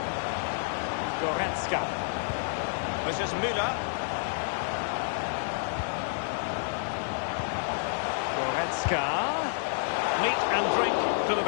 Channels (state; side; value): silent; right; 58 dB below the other